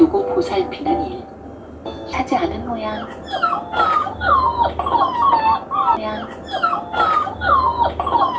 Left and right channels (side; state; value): both; identical; correlation 1.00